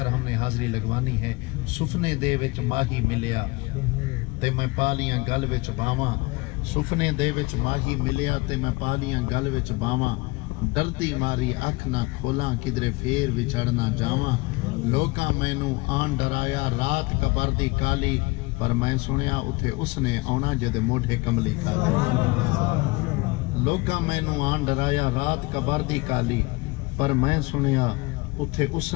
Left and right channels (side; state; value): right; quieter; 24.1 dB